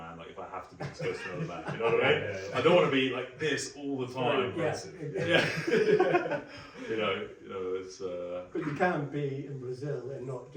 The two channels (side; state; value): both; identical; correlation 1.00